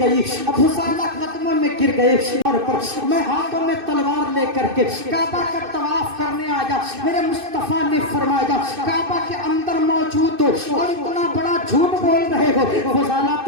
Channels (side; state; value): left; late; 2.6 ms